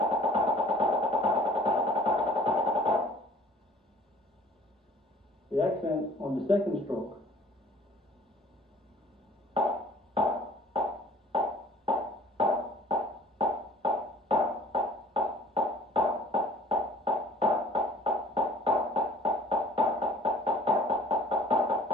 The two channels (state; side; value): normal; both; correlation 0.49